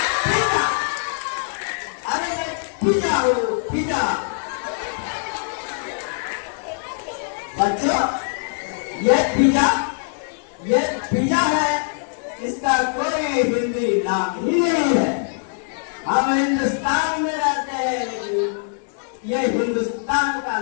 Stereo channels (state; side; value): silent; right; digital silence